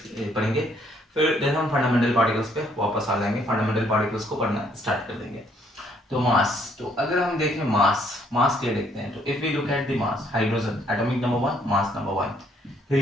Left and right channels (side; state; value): both; normal; correlation 0.67